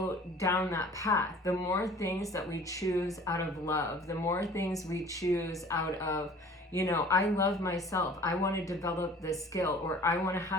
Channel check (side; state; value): both; normal; correlation 0.48